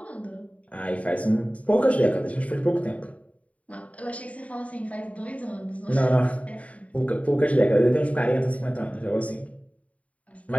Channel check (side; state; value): right; late; 0.067 ms